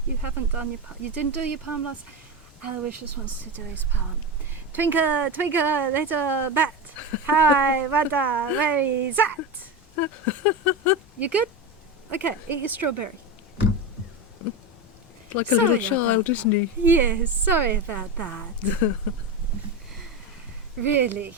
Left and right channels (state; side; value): normal; both; correlation 0.19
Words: You haven't done your poem. You didn't do your poem last. Aloysius wants to do his poem. Twinkle, twinkle, little bat. How I wonder where he's at. You good? Okay, eat your strawberry. Like a little child, isn't he? Yes, sorry about that. Really,